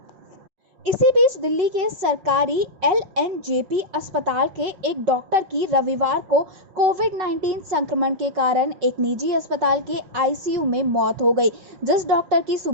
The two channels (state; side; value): late; left; 5.5 ms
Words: इसी बीच दिल्ली के सरकारी LNJP अस्पताल के एक डॉक्टर की रविवार को कोविड-19 संक्रमण के कारण एक निजी अस्पताल के ICU में मौत हो गई। जिस डॉक्टर की